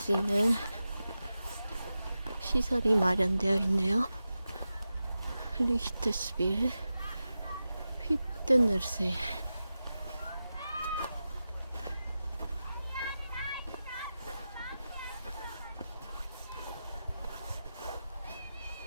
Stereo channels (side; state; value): both; inverted; correlation -0.93